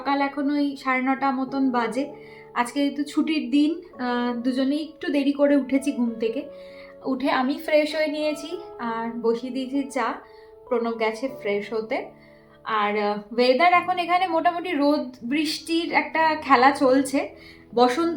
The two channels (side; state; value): both; identical; correlation 1.00